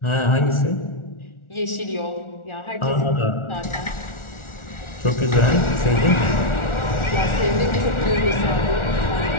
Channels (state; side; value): late; right; 1.4 ms